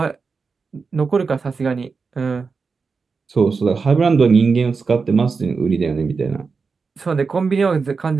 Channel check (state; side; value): quieter; left; 4.9 dB